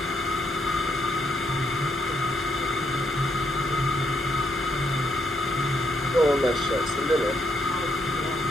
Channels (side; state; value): both; normal; correlation 0.75